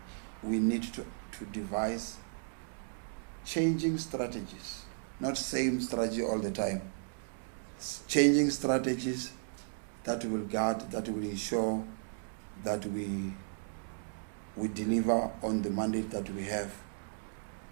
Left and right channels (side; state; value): left; silent; digital silence